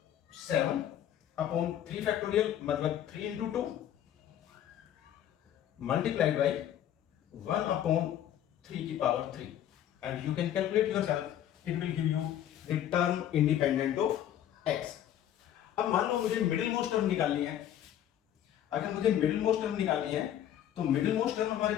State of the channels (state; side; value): quieter; right; 11.0 dB